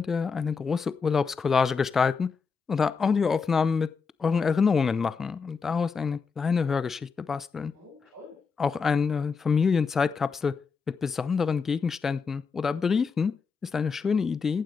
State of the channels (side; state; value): right; quieter; 5.4 dB